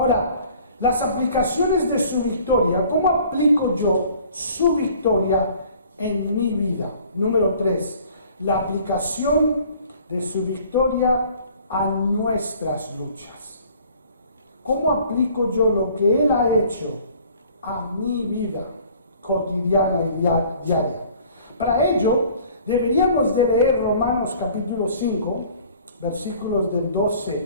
las aplicaciones de su victoria, ¿cómo aplico yo su victoria en mi vida? Número 3, la aplicación de su victoria a nuestras luchas. ¿Cómo aplico yo lo que Él ha hecho a mi vida cotidiana y diaria? Para ello, deberíamos de leer Romanos capítulo 5, versículos del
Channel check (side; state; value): both; inverted; correlation -0.53